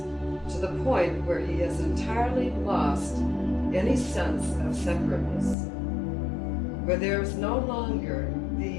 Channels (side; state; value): right; drops out; at 5.6 s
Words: to the point where he has entirely lost any sense of separateness, where there is no longer